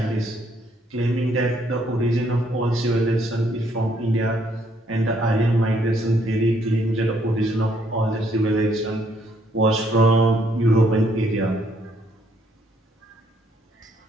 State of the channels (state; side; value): normal; both; correlation 0.69